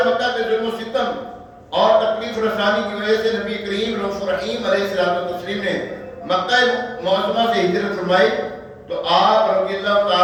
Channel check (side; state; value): both; identical; correlation 1.00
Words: مکہ کے ظلم و ستم اور تکلیف رسانی کی وجہ سے نبی کریم رؤوف رحیم علیہ الصلوۃ والتسلیم نے مکہ معظمہ سے ہجرت فرمائی تو آپ رضی اللہ